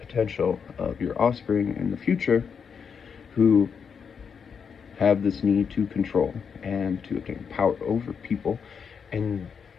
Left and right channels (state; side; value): quieter; right; 6.5 dB